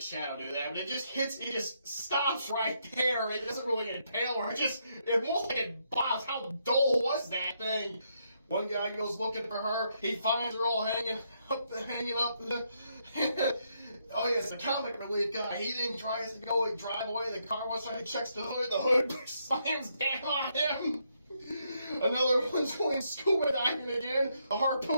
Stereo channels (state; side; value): inverted; both; correlation -0.77